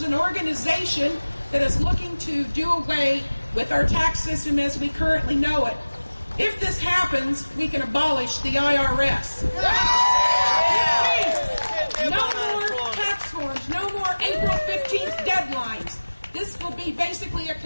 an organization that is looking to do away with our tax system as we currently know it. If this happens, we can abolish the IRS. No more tax forms, no more April 15th deadlines. This will be basically a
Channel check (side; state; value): both; inverted; correlation -1.00